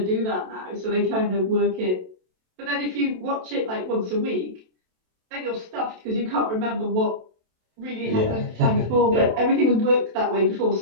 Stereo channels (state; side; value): late; left; 27 ms